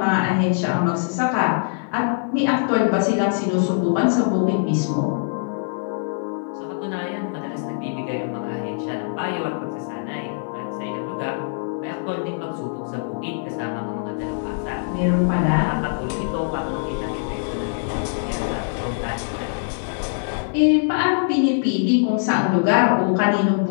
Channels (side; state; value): right; silent; 55 dB below the other